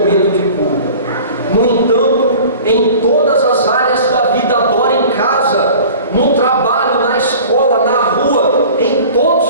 de culto, no entanto, em todas as áreas da vida. Adora em casa, no trabalho, na escola, na rua, em todos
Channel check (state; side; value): inverted; both; correlation -0.43